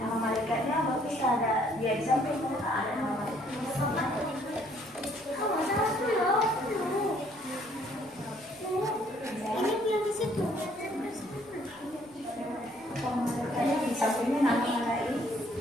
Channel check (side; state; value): right; noise; rumble, 30 dB below the sound